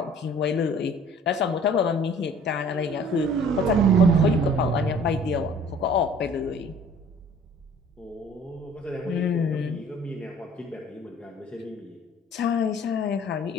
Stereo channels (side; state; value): both; normal; correlation 0.51